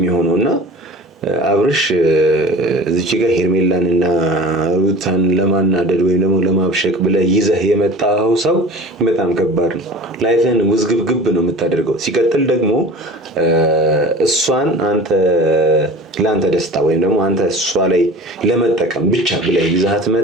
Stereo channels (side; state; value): both; normal; correlation 0.38